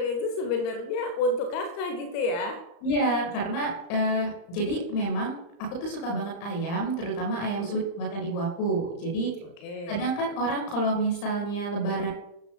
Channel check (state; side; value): late; right; 35 ms